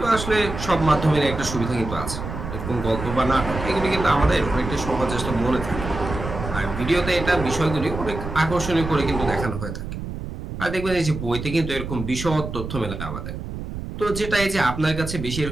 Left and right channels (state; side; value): noise; right; rumble, 7 dB below the sound